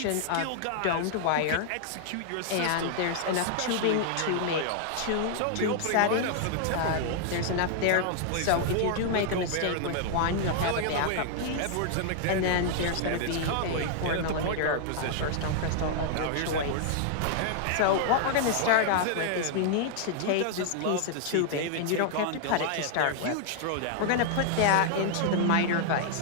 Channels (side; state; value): both; different; correlation -0.01